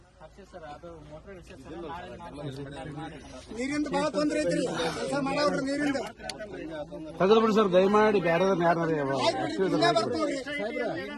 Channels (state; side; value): identical; both; correlation 1.00